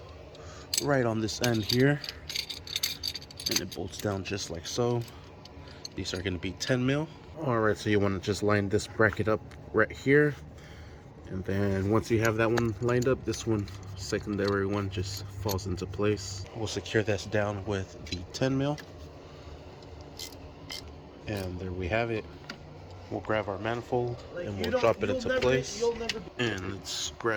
right on this end here. And it bolts down just like so. These are going to be 10 mil. Alright, so you want to just line this bracket up right here. And then once you have that one lined up, this one, secondary one, just falls into place. We'll secure this down with the 10 mil. And there we have it. We'll grab our manifold and we'll drop it into place. And let's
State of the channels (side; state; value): both; identical; correlation 1.00